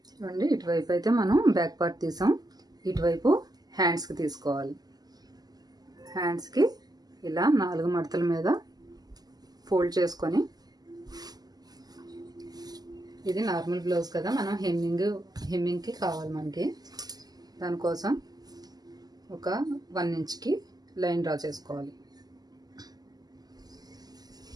చూడండి, ఇటువైపు అయితే మనం బ్యాక్ పార్ట్ తీసాం, ఇటువైపు హ్యాండ్స్కి తీసుకోవాలి. హ్యాండ్స్కి ఇలా 4 మడతల మీద ఫోల్డ్ చేసుకొని, ఇది నార్మల్ బ్లౌజ్ కదా, మనం హెమ్మింగ్కి కావాలి మనకి. దానికోసం ఒక 1 ఇంచ్కి లైన్ డ్రా చేసుకోవాలి.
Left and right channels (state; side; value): late; left; 0.19 ms